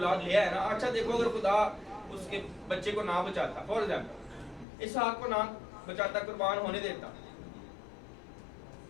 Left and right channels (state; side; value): drops out; right; at 4.7 s